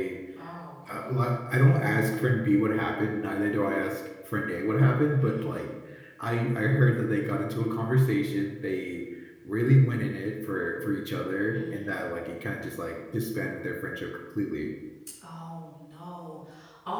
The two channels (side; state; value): both; identical; correlation 1.00